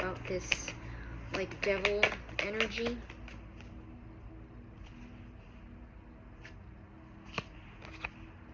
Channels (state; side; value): identical; both; correlation 1.00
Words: this like devil energy?